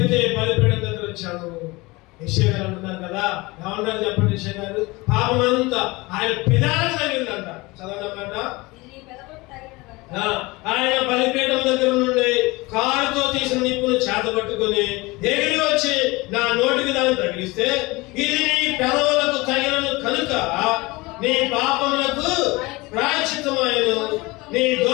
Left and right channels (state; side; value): quieter; right; 23.0 dB